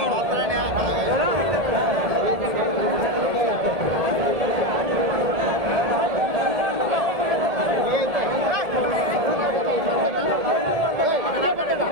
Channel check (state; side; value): late; left; 1.7 ms